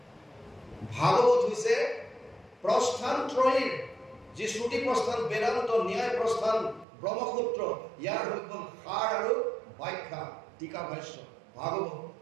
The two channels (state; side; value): drops out; left; at 6.9 s